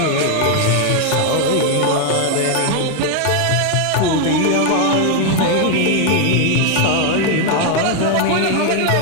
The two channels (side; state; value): both; different; correlation 0.01